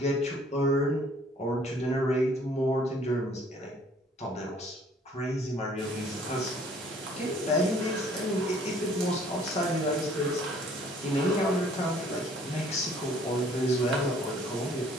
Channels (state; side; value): normal; both; correlation 0.57